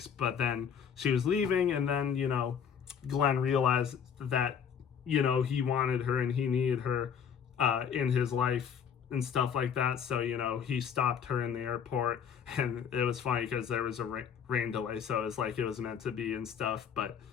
But then she was leaving, and then, Glenn realized that, he wanted her and he needed her in his life and stuff like that. So, he stopped her in the airport, and it was funny because there was a rain delay. So it was like it was meant to be and stuff. But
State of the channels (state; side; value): quieter; right; 7.6 dB